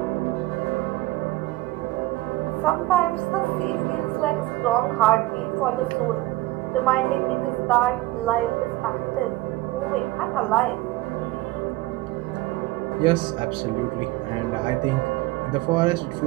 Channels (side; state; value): left; quieter; 18.6 dB